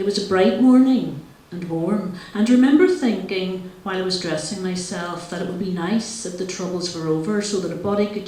was a bright morning and warm, and remember thinking while I was dressing myself that it would be nice if the troubles were over so that a body could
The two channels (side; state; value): both; identical; correlation 1.00